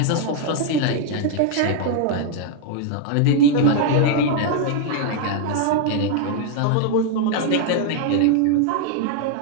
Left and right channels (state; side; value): different; both; correlation 0.00